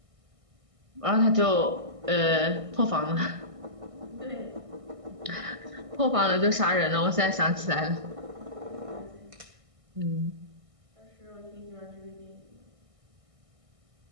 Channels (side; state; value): left; late; 1.6 ms